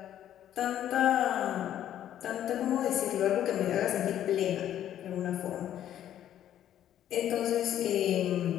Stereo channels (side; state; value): right; quieter; 11.2 dB